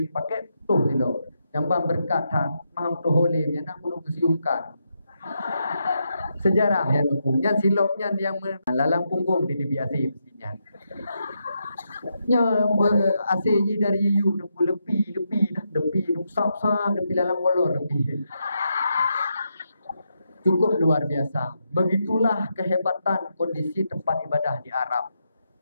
pakai putus silap. Yang bang berkat tak maham tu holim yang nak perlu kesiumkan. Sejarah yang hukum. Yang silapnya yang lalang punggung di biasa mestinya. Nya ACJ dari you lebih sap-sap lebih lalang kolor lebih. Cukup luar biasa. Begitulah kehebatan kondisi tempat ibadah di Arab.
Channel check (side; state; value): both; inverted; correlation -0.83